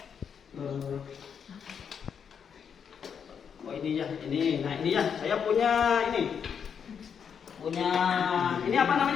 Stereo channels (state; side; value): quieter; right; 7.2 dB